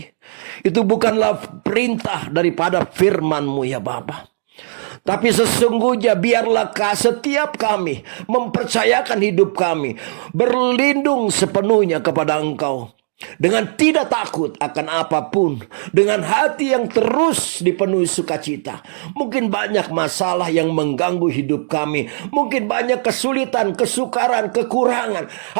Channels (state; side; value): silent; left; digital silence